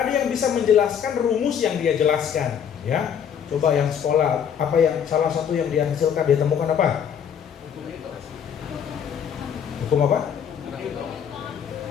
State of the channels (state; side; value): quieter; right; 8.2 dB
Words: ada yang bisa menjelaskan rumus yang dia jelaskan, ya. Coba yang sekolah, apa yang salah satu yang dia hasilkan, dia temukan apa? Hukum apa?